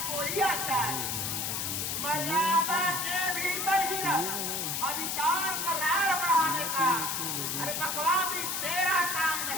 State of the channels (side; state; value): left; noise; hiss, 1 dB below the sound